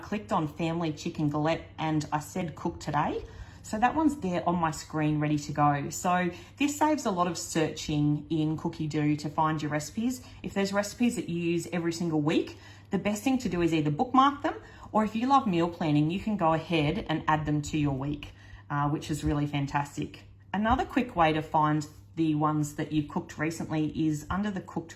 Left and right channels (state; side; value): identical; both; correlation 1.00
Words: on family chicken galette and I said cook today. So that one's there on my screen ready to go. So this saves a lot of searching in Cookidoo to find your recipes. If there's recipes that you use every single week, the best thing to do is either bookmark them, or if you love meal planning, you can go ahead and add them to your week, which is really fantastic. Another quick way to find the ones that you've cooked recently is under the cooked